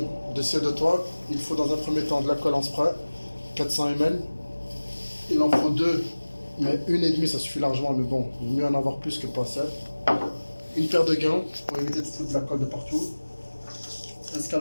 de ciel de toit, il faut dans un premier temps de la colle en spray, 400 ml. Il en faut deux, mais une et demie ça suffit largement, mais bon, il vaut mieux en avoir plus que pas assez. Une paire de gants pour éviter de foutre de la colle de partout. Un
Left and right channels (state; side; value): inverted; both; correlation -1.00